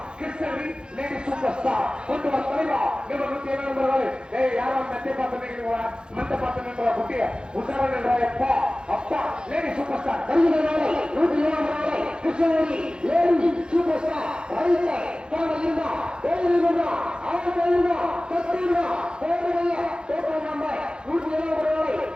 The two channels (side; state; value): left; late; 0.049 ms